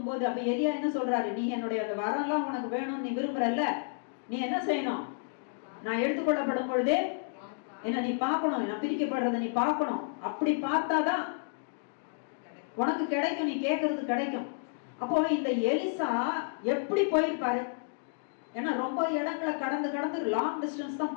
போது அப்ப எலியா என்ன சொல்றாரு? நீ என்னுடைய அந்த வரம்லாம் உனக்கு வேணும்னு நீ விரும்புறல்ல, நீ என்ன செய்யணும்? நான் எடுத்துக்கொள்ளப்படும் பொழுதே என்ன நீ பார்க்கணும், நான் பிரிக்கப்படுறத நீ பார்க்கணும். அப்படி பார்த்தாதான் உனக்கு கிடைக்கும், நீ கேட்கறது கிடைக்கும். அப்போ இந்த எலிசா எப்படி போயிருப்பாரு? ஏன்னா ரொம்ப இடங்களை கடந்து லாங் டிஸ்டன்ஸ் தான்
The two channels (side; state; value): right; silent; digital silence